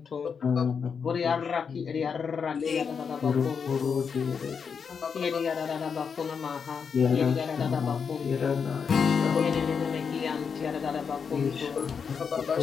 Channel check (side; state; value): right; quieter; 6.2 dB